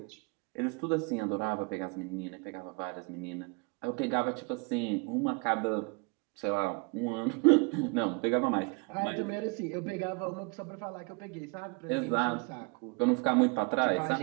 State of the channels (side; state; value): left; quieter; 30.9 dB